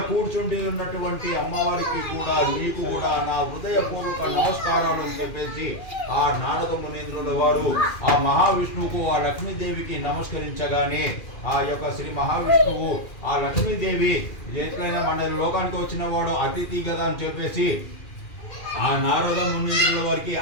కూర్చుండి ఉన్నటువంటి అమ్మవారికి కూడా నీకు కూడా నా హృదయపూర్వక నమస్కారాలు అని చెప్పేసి ఆ నారద మునేంద్రుల వారు ఆ మహావిష్ణువుకు ఆ లక్ష్మీదేవికి నమస్కరించగానే ఆ యొక్క శ్రీ మహావిష్ణువు ఆ లక్ష్మీదేవి ఎట్లయినా మన లోకానికి వచ్చిన వాడు అతిథి కదా అని చెప్పేసి ఆ నారద మునీంద్రుల వారికి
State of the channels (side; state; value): right; late; 2.4 ms